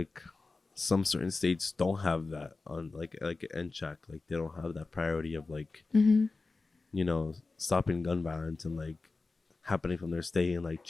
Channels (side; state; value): right; quieter; 3.7 dB